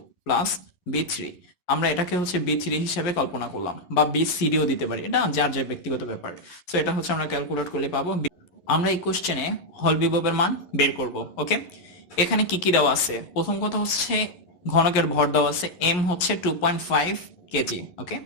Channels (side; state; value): right; late; 11 ms